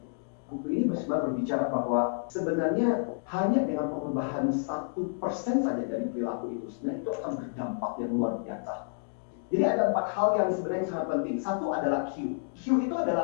Buku ini sebenarnya berbicara bahwa sebenarnya hanya dengan perubahan 1% saja dari perilaku itu, sebenarnya itu akan berdampak yang luar biasa. Jadi ada 4 hal yang sebenarnya sangat penting. Satu adalah Q. Q itu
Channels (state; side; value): silent; right; digital silence